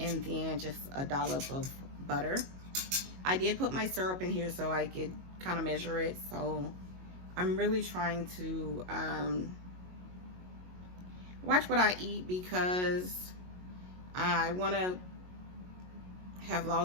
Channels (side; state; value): left; late; 22 ms